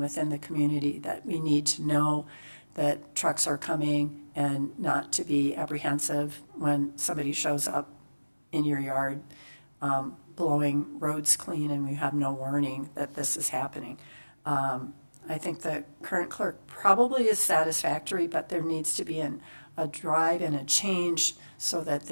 the community, that we need to know that trucks are coming and not to be apprehensive when somebody shows up in your yard blowing roads clean and we have no warning that this is happening. I think the current clerk probably is satisfactory, but there needs to be a drive and a change so that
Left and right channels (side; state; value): both; inverted; correlation -1.00